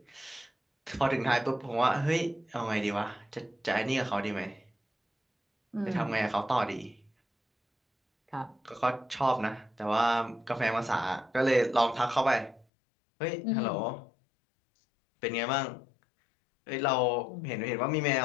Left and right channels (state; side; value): drops out; right; at 12.7 s